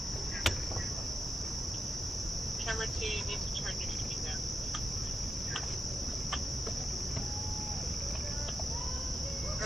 Camera 2, you need to turn your speed down.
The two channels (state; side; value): normal; both; correlation 0.87